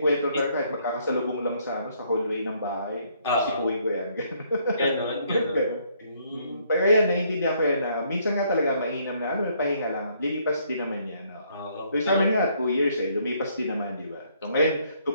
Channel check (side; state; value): both; inverted; correlation -0.68